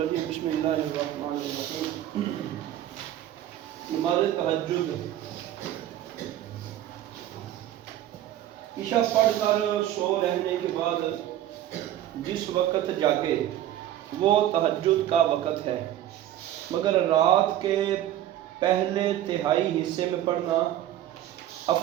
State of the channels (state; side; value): quieter; left; 12.5 dB